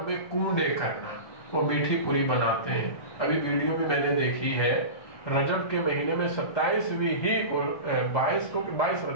میں کنڈے کرنا، وہ میٹھی پوری بناتے ہیں۔ ابھی ویڈیو بھی میں نے دیکھی ہے، رجب کے مہینے میں 27ویں ہی کو 22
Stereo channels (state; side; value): late; right; 1.2 ms